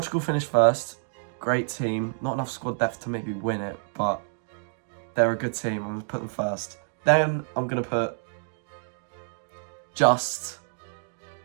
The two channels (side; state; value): left; silent; 60 dB below the other